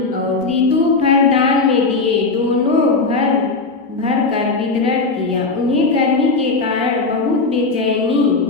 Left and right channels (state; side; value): quieter; right; 3.9 dB